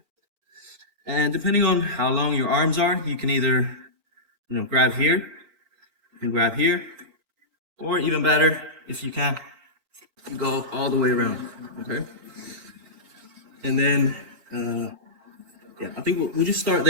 And depending on how long your arms are, you can either, grab here, you can grab here, or even better, if you can, you go all the way around, okay? And then, I think we'll just start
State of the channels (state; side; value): late; left; 4.4 ms